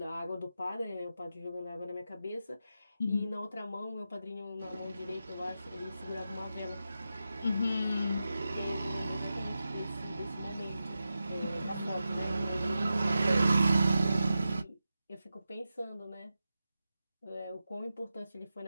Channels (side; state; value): both; inverted; correlation -0.91